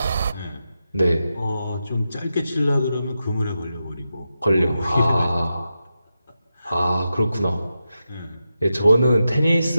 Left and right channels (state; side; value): inverted; both; correlation -0.89